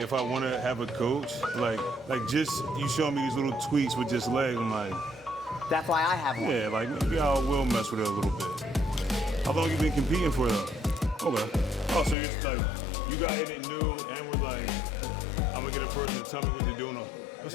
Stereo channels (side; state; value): right; drops out; at 12.2 s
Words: if I want to have a coach, like just you show me these little tweaks with just legs, I'm like, that's why I have one. Yeah, like maybe I will mess with it a little bit. How long you been competing for though? Okay. Oh, so you're just like, you got in it new and we're like, I'm gonna get a person to tell me what they're doing.